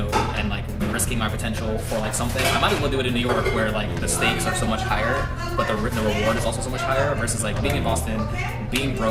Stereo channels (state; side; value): identical; both; correlation 1.00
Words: like risking my potential for like something, I might as well do it in New York, where like the stakes are so much higher, but the reward is also so much higher, versus like being in Boston, being